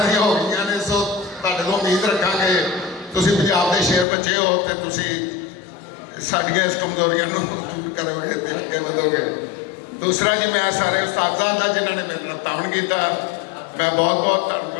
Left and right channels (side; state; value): right; drops out; at 4.0 s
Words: ਦੀਆਂ ਹੋ ਗਈਆਂ ਨੇ। ਸੋ ਤੁਹਾਡੇ ਤੋਂ ਉਮੀਦ ਰੱਖਾਂਗੇ, ਤੁਸੀਂ ਪੰਜਾਬ ਦੇ ਸ਼ੇਰ ਬੱਚੇ ਹੋ ਤੇ ਤੁਸੀਂ ਸਾਡੀਆਂ ਇਸ ਕਮਜ਼ੋਰੀਆਂ ਨੂੰ ਦੂਰ ਕਰੋਗੇ ਤੇ ਅੱਗੇ ਵਧੋਗੇ। ਦੂਸਰਾ ਜੀ, ਮੈਂ ਸਾਰੇ ਉਸਤਾਦਾਂ ਦਾ ਜਿਨ੍ਹਾਂ ਨੇ ਮੇਰੇ ਨਾਲ ਤਾਣ ਕੀਤਾ, ਮੈਂ ਬਹੁਤ ਬਹੁਤ